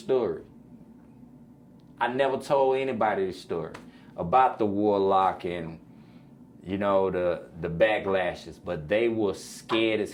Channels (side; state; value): both; identical; correlation 1.00